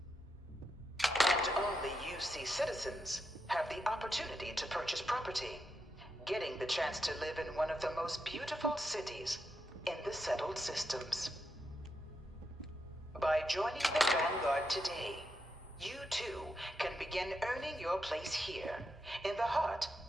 And only UC citizens have the opportunity to purchase property, getting the chance to live in one of the most beautiful cities in the settled systems. By joining the Vanguard today, you too can begin earning your place here, in the heart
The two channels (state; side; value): normal; both; correlation 0.84